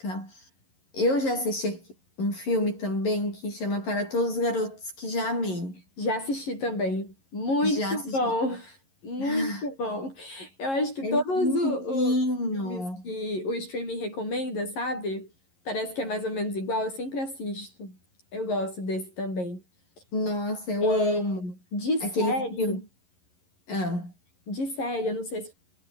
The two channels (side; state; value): right; late; 11 ms